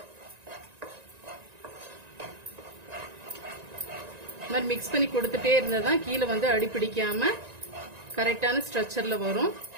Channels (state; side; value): late; left; 1.9 ms